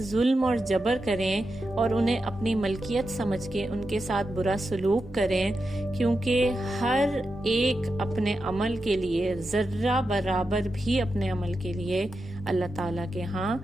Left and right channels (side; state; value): both; normal; correlation 0.89